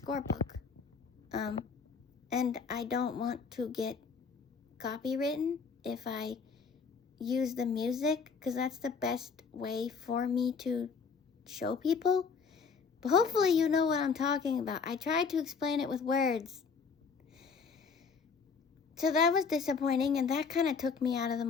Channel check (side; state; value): right; quieter; 5.4 dB